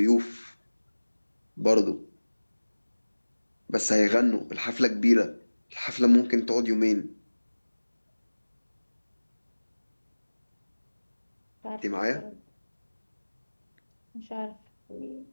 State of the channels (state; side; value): inverted; both; correlation -1.00